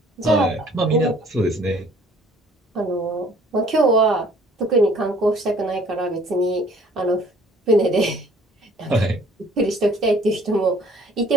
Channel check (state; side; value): normal; both; correlation 0.56